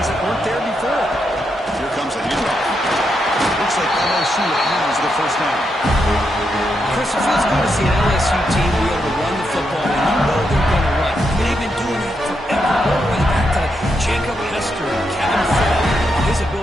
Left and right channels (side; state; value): both; normal; correlation 0.82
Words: that weren't there before. Here comes a handoff. Looks like LSU has the first down. Chris, it feels good to see an LSU team be able to run the football, and you know they're going to run. They've been doing that forever. All the way back to Jacob Hester and Kevin Ford. His